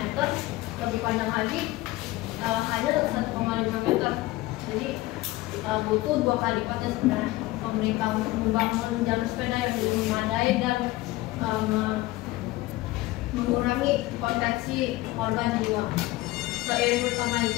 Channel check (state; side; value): quieter; right; 18.6 dB